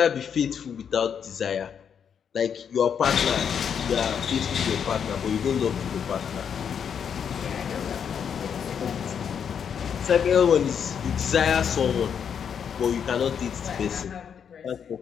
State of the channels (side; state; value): right; quieter; 7.6 dB